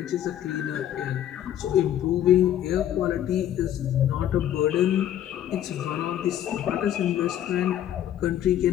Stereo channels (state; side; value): quieter; right; 11.3 dB